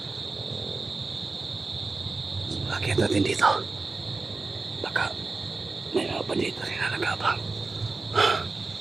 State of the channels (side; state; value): left; quieter; 3.8 dB